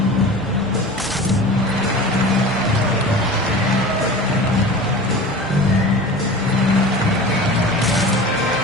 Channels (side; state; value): both; normal; correlation 0.36